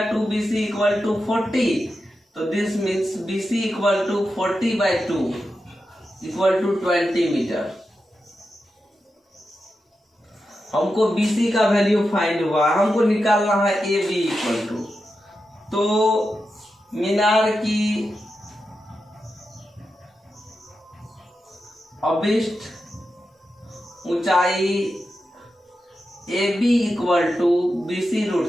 2BC इक्वल टू 40। तो this means BC equal to 40/2 equal to 20 metre. हमको BC का वैल्यू फाइंड हुआ, हमको निकालना है AB इक्वल टू, तो मीनार की अभिष्ट ऊंचाई AB equal to BC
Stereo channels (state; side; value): normal; both; correlation 0.89